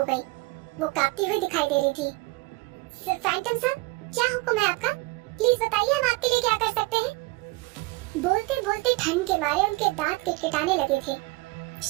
गई। वो कांपती हुई दिखाई दे रही थी। फैंटम सर, क्या हुक्म है आपका? प्लीज बताइए, हम आपके लिए क्या कर सकते हैं? बोलते बोलते ठंड के मारे उनके दांत किटकिटाने लगे थे।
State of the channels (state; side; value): quieter; left; 23.3 dB